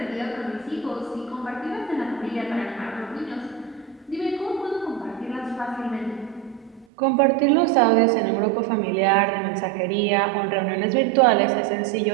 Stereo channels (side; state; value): left; drops out; at 6.9 s